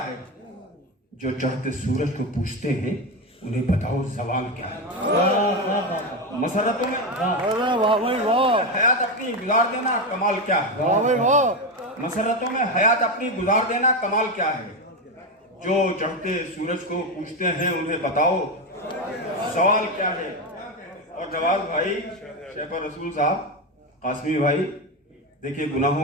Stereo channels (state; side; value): normal; both; correlation 0.13